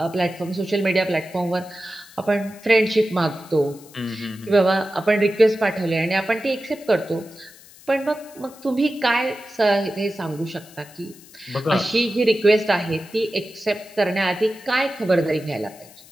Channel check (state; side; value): noise; left; hiss, 22 dB below the sound